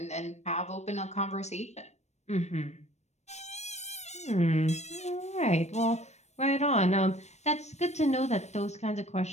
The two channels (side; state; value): right; late; 0.32 ms